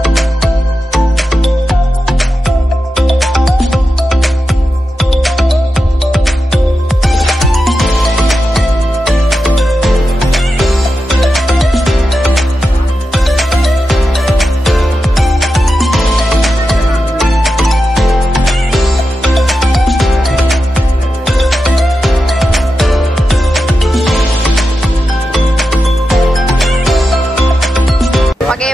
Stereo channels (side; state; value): both; normal; correlation 0.90